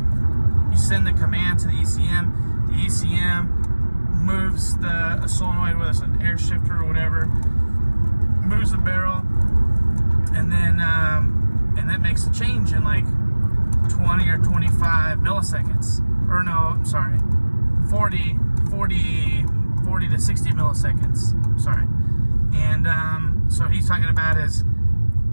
send the command to the ECM. The ECM moves the solenoid, whether it's an air shifter or whatever, moves the barrel, and then and that makes a change in like 20 or 25 milliseconds. Or no, I'm sorry, 40 to 60 milliseconds. Sorry. And so he's talking about is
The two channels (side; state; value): both; inverted; correlation -1.00